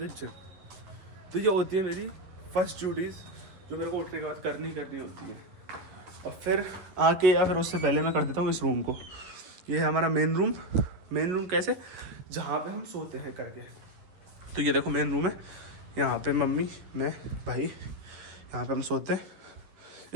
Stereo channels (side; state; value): left; late; 11 ms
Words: जिम। तो ये होती है मेरी फर्स्ट ड्यूटीज़, जो मेरे को उठने के बाद करनी होती है। और फिर आके, या फिर उससे पहले मैं कर देता हूँ इस रूम को। ये है हमारा मेन रूम कैसे, जहाँ पे हम सोते हैं करके। तो ये देखो मेन रूम है, यहाँ पे मम्मी, मैं, भाई, यहाँ पे हम सोते हैं।